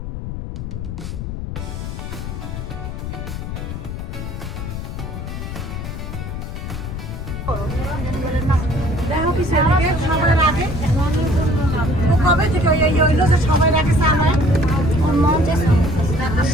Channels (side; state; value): left; noise; rumble, 6 dB below the sound